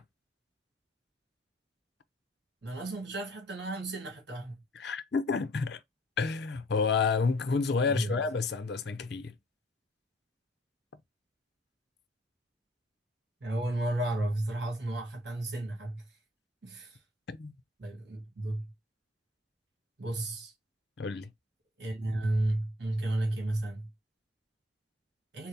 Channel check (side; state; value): both; normal; correlation 0.59